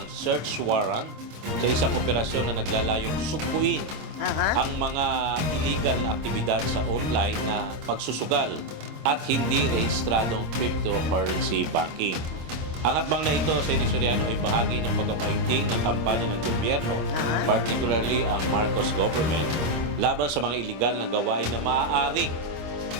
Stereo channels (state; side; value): late; left; 26 ms